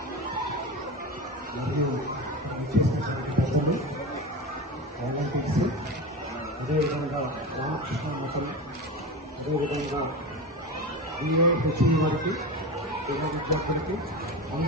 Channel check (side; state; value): both; normal; correlation 0.24